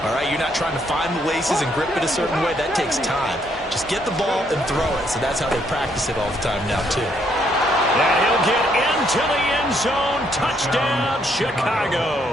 All right? You're not trying to find the laces and grip it a certain way. That takes time. Just get the ball and throw it. So that's how they practice it all the time now, too. And he'll get into the end zone. Touchdown,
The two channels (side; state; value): both; normal; correlation 0.71